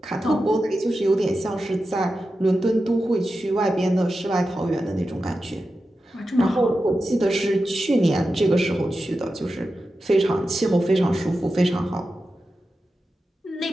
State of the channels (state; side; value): normal; both; correlation 0.91